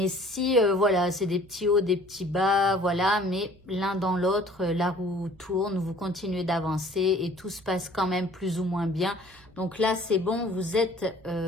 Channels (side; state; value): right; noise; hum, 26 dB below the sound